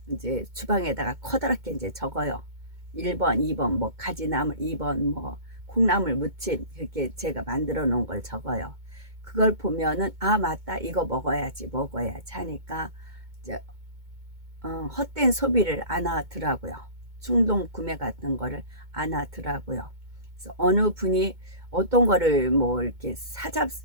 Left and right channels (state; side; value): late; left; 2.2 ms